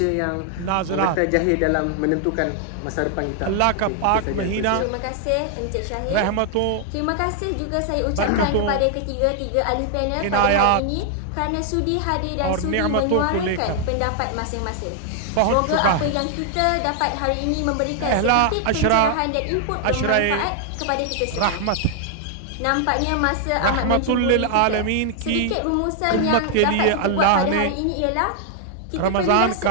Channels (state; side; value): different; both; correlation 0.00